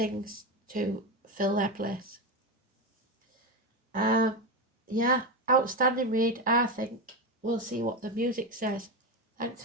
to fill their place. Yeah, outstanding read, I think. We'll see what the music says. Thanks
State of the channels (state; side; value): normal; both; correlation 0.15